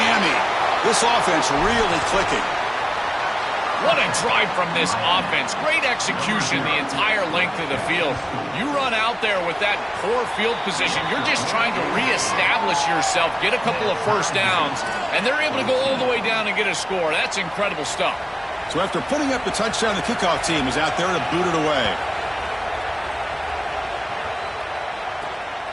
This offense really clicking. What a drive from this offense. Great execution the entire length of the field. You run out there with that poor field position. You're just trying to reestablish yourself, get a couple of first downs, and they're able to go all the way down and get a score. That's incredible stuff. So after putting up the touchdown, the kickoff team is out there to boot it away.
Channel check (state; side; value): identical; both; correlation 1.00